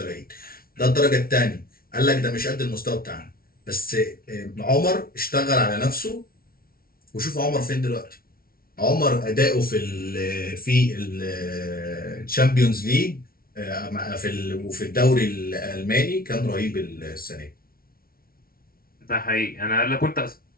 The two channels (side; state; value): right; late; 0.43 ms